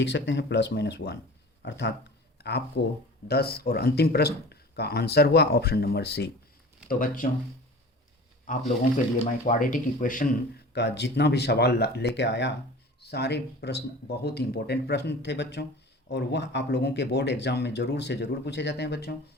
सकते हैं प्लस माइनस 1। अर्थात आपको 10 और अंतिम प्रश्न का आंसर हुआ ऑप्शन नंबर सी। तो बच्चों आप लोगों के लिए मैं क्वाड्रेटिक इक्वेशन का जितना भी सवाल लेके आया, सारे प्रश्न बहुत ही इंपॉर्टेंट प्रश्न थे बच्चों, और वह आप लोगों के बोर्ड एग्जाम में ज़रूर से ज़रूर पूछे जाते हैं बच्चों।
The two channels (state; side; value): normal; both; correlation 0.40